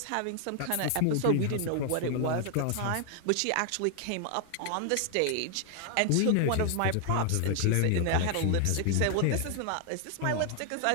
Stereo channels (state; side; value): different; both; correlation 0.00